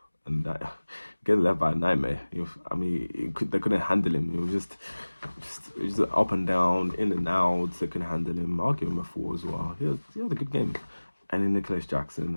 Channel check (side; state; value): both; inverted; correlation -1.00